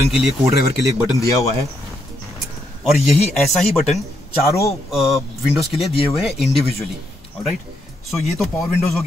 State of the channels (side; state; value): both; normal; correlation 0.78